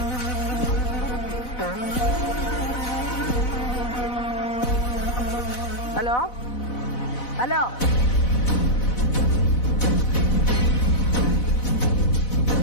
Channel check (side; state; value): right; late; 4.0 ms